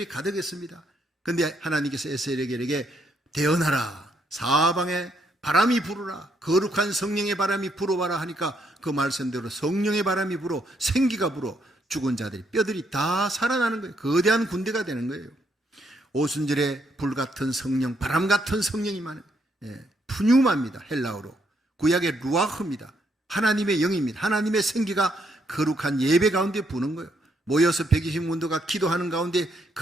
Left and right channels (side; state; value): both; normal; correlation 0.75